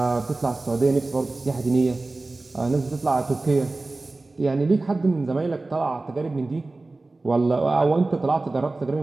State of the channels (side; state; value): left; quieter; 3.2 dB